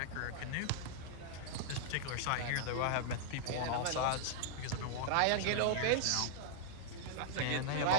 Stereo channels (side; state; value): both; different; correlation -0.01